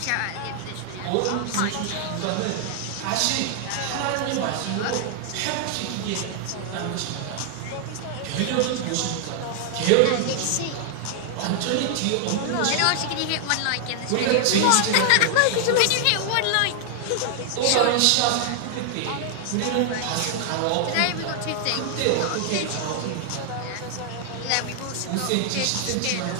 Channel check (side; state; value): both; different; correlation 0.00